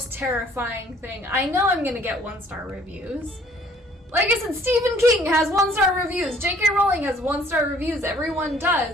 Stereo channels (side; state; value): both; normal; correlation 0.58